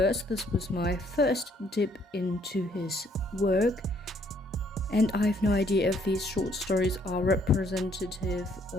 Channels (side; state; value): both; normal; correlation 0.66